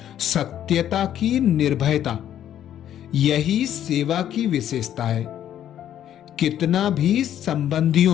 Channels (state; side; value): quieter; right; 10.8 dB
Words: सत्यता की निर्भयता, यही सेवा की विशेषता है। कितना भी